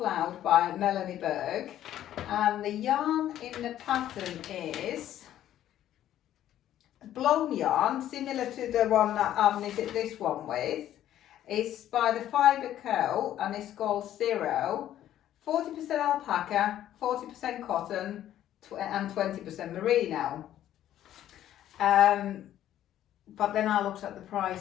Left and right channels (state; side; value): quieter; right; 12.0 dB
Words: by Melanie Berg, and the yarn in the pattern is blown yarn, similar to the one that I've knitted this one with. It's by the Fibre Co, and it's called Zero. 40% alpaca, 40% cotton, and 20% merino. But then I looked at the